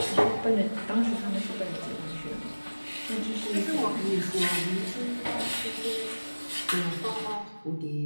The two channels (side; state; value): both; inverted; correlation -1.00